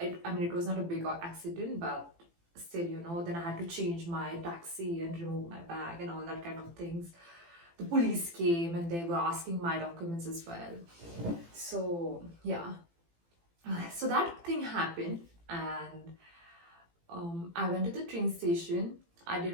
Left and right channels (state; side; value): late; left; 18 ms